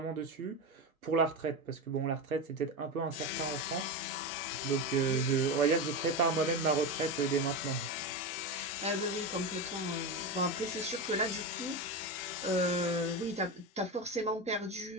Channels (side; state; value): both; normal; correlation 0.18